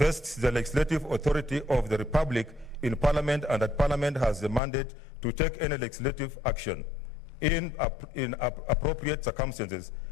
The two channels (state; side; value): drops out; right; at 4.6 s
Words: the legislative authority of the Republic in Parliament, and that Parliament has the mandate to take any legislative action in appropriate circumstances